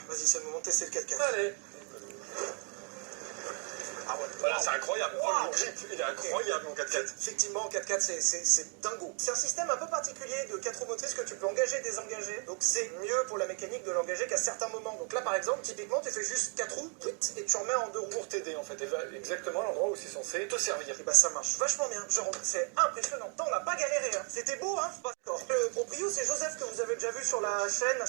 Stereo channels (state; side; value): quieter; left; 39.0 dB